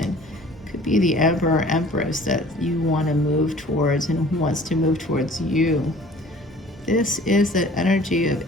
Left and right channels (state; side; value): normal; both; correlation 0.49